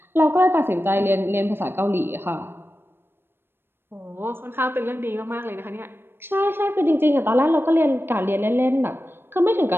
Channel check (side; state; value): left; late; 0.10 ms